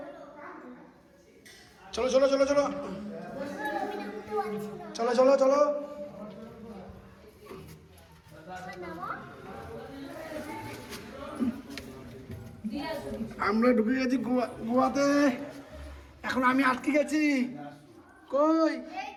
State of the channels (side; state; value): both; identical; correlation 1.00